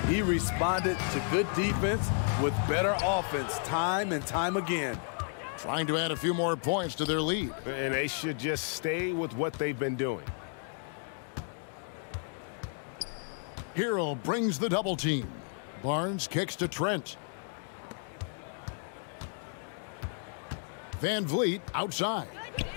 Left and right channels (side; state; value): right; silent; 56 dB below the other